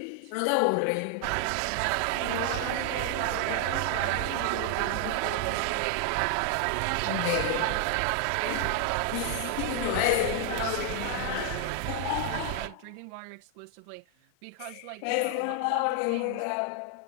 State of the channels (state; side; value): different; both; correlation 0.00